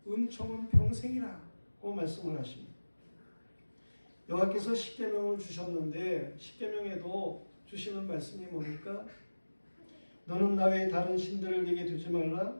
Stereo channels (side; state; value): both; inverted; correlation -1.00